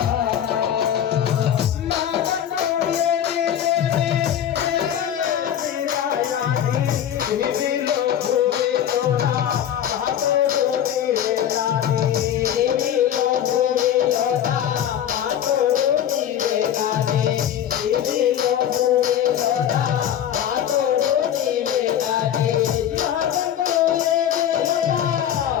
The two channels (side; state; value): right; quieter; 10.1 dB